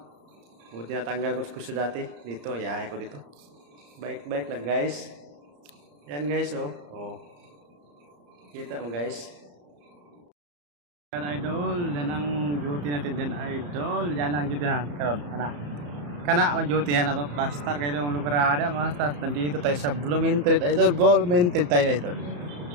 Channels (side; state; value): left; late; 34 ms